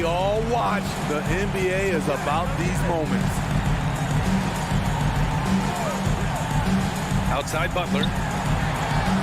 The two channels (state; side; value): identical; both; correlation 1.00